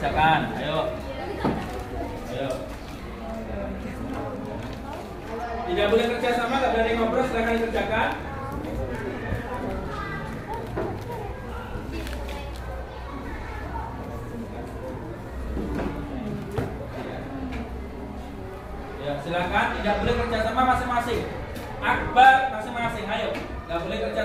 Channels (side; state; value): both; identical; correlation 1.00